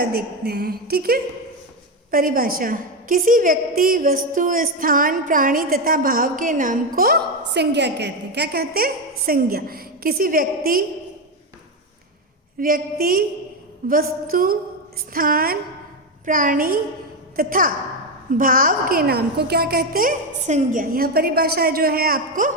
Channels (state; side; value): normal; both; correlation 0.10